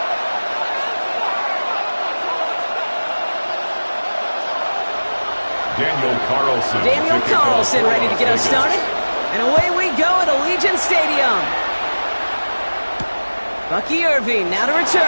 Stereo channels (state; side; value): inverted; both; correlation -1.00